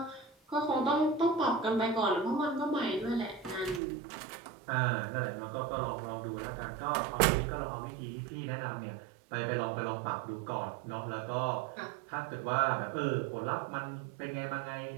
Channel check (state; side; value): drops out; left; at 3.8 s